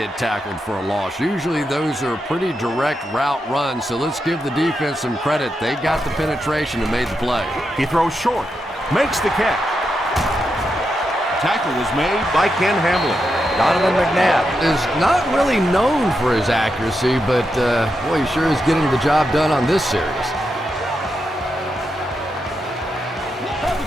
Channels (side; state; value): both; normal; correlation 0.85